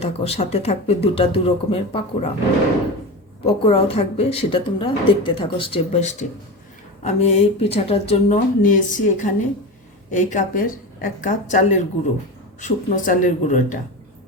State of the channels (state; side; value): normal; both; correlation 0.25